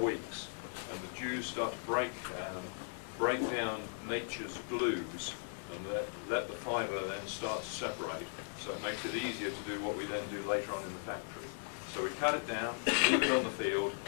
And the dews start to break down nature's glues, and let the fibre then start to separate. So it makes it easier to do what we then do later on in the factory. So we cut it down, leave it on the field,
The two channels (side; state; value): right; silent; 53 dB below the other